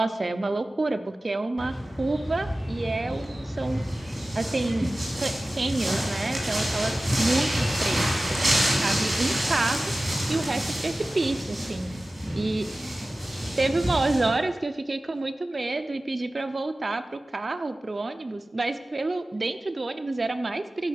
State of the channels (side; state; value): both; normal; correlation 0.96